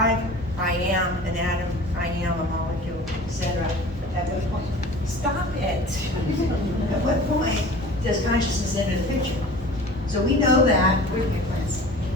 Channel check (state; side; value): normal; both; correlation 0.41